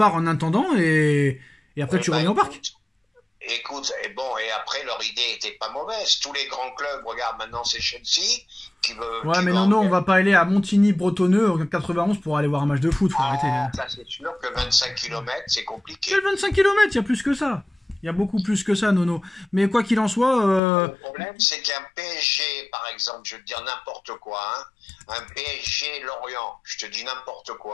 en attendant et après tu reviens au parc. Écoute, et après leur idée était pas mauvaise. Tous les grands clubs, regarde maintenant c'est Chelsea qui veut. Ouais, mais non, on va pas aller à Montigny-Bretonneux en 91 pour aller voir un match de foot. Faut arrêter. Ça c'est sûr que 25 km c'est compliqué. Quel 25 km? Il y a plus que ça. Il y a beaucoup plus que ça, Nono. Mais quoi qu'il en soit... Le problème, c'est qu'un PSG, par exemple, je veux te dire n'importe quoi, hein, un PSG Lorient, je te dis n'importe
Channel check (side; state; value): right; drops out; at 20.6 s